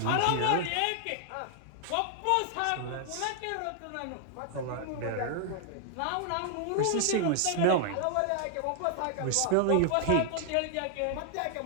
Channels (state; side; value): different; both; correlation 0.00